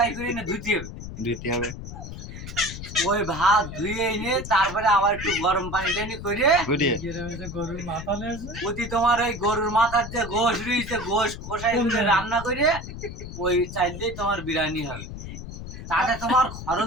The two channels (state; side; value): noise; left; rumble, 10 dB below the sound